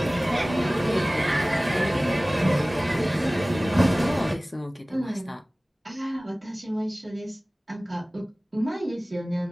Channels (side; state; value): both; normal; correlation 0.98